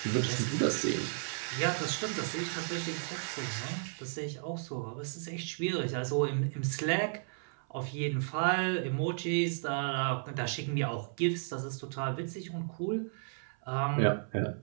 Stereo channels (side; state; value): left; silent; 55 dB below the other